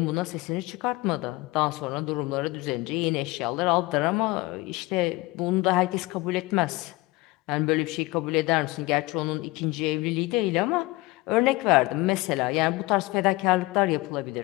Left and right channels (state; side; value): quieter; right; 21.7 dB